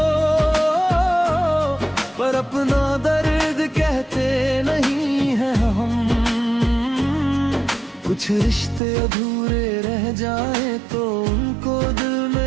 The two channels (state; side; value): drops out; left; at 8.8 s